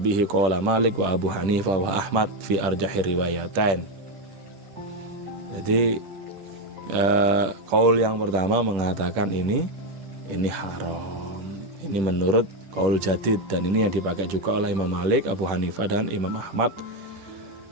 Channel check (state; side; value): late; left; 10 ms